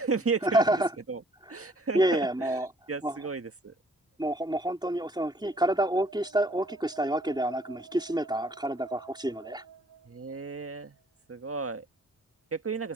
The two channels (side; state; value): both; normal; correlation 0.61